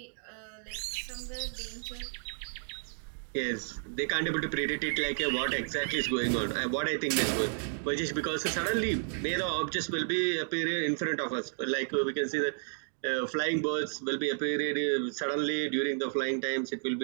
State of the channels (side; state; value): left; silent; digital silence